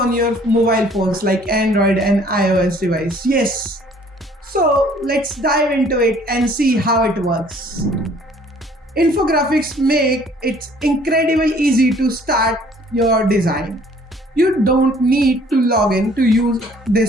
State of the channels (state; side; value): normal; both; correlation 0.57